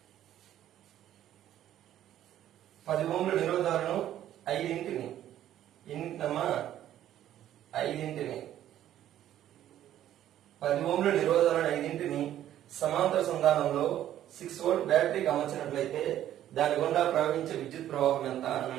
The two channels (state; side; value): quieter; left; 11.9 dB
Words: 10 ఓంల నిరోధాలను 5 ఓంల నిరోధాలను 5 సమాంతర సంధానంలో 6 వోల్ట్ బ్యాటరీకి అమర్చినట్లయితే దాని గుండా ప్రవహించే విద్యుత్ ప్రవాహం ఎంత